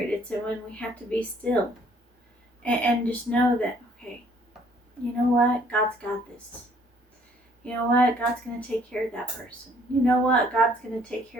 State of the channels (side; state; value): both; normal; correlation 0.61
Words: It's when we have to be still and just know that, okay, you know what? God's got this. You know what? God's going to take care of that person. You know what? God's going to take